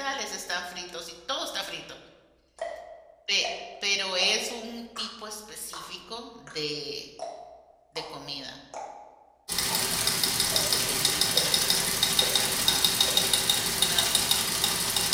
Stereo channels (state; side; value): identical; both; correlation 1.00